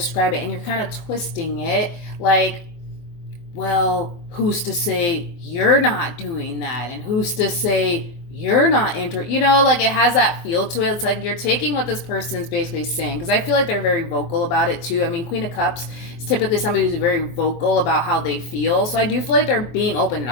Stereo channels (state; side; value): late; right; 24 ms